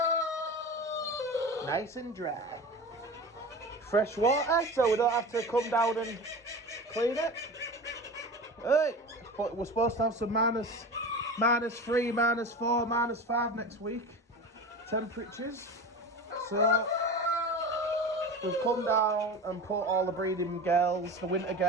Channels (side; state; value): both; normal; correlation 0.31